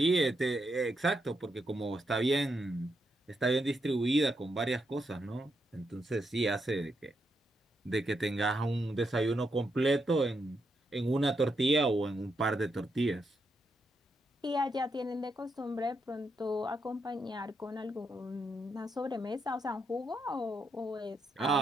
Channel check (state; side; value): normal; both; correlation 0.81